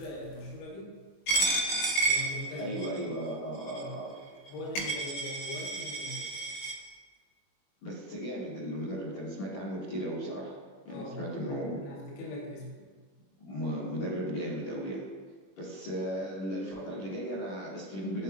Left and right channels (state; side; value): late; right; 21 ms